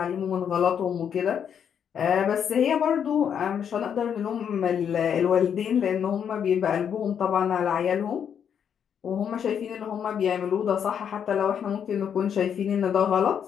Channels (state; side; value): quieter; right; 8.1 dB